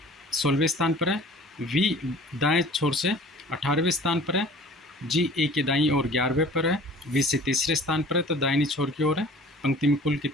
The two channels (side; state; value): both; normal; correlation 0.47